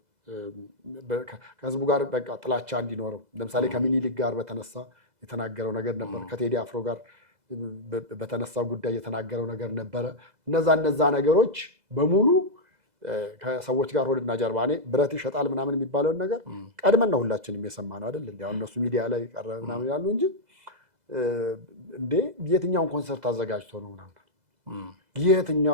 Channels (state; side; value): late; left; 2.0 ms